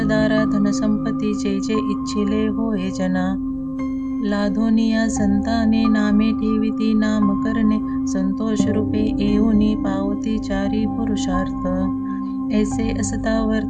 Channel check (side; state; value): both; identical; correlation 1.00